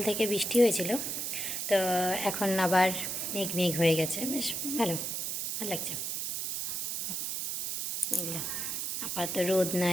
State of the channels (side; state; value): right; noise; hiss, 2 dB below the sound